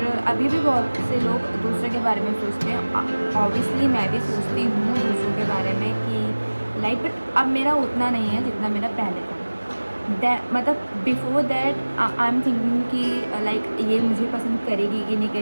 अभी भी बहुत से लोग दूसरों के बारे में सोचते हैं। ऑब्वियसली मैं भी सोचती हूँ दूसरों के बारे में कि लाइक, बट अब मेरा उतना नहीं है जितना मेरा पहले था। मतलब before that I am thinking कि लाइक ये मुझे पसंद करेगी कि नहीं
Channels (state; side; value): inverted; both; correlation -1.00